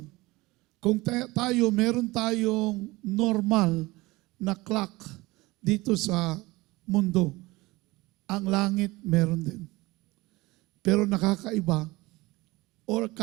Kung meron tayong normal na clock dito sa mundo, ang langit meron din. Pero nakakaiba or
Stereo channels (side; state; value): left; quieter; 21.3 dB